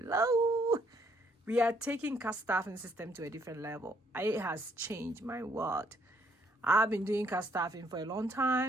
We are taking cast staffing system to a different level. It has changed my world. I've been doing cast staffing for a long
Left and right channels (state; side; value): normal; both; correlation 0.69